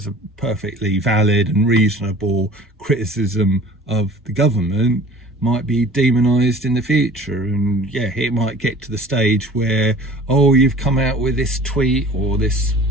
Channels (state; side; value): normal; both; correlation 0.45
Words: a perfectly valid and reasonable criticism of the government might be demonized in the future. And it might get to the stage where, oh, you've come out with this tweet or this